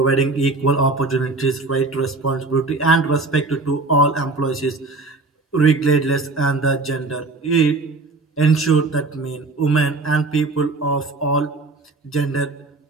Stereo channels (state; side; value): quieter; left; 3.4 dB